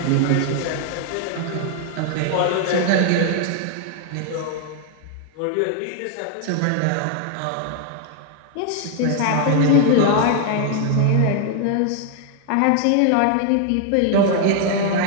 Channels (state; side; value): different; both; correlation 0.00